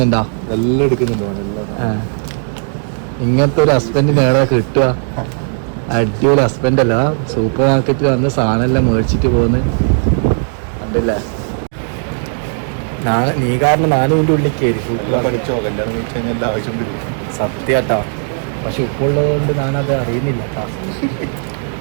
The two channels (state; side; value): silent; left; 63 dB below the other